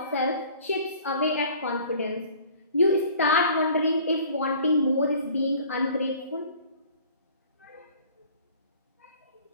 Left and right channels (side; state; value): both; inverted; correlation -0.50